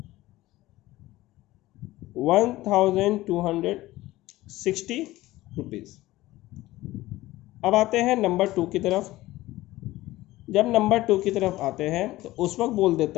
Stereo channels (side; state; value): right; quieter; 17.3 dB